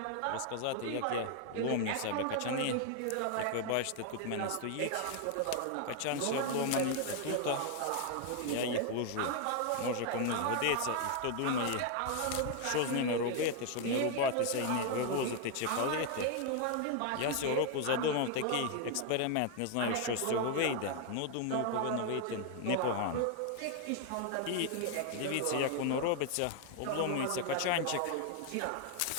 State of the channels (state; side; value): different; both; correlation 0.00